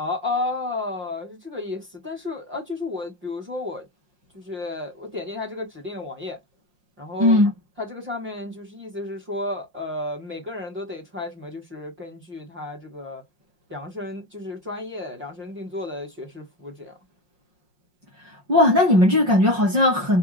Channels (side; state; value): left; late; 5.6 ms